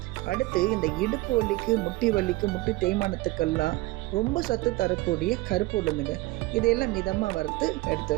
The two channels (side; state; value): left; quieter; 19.8 dB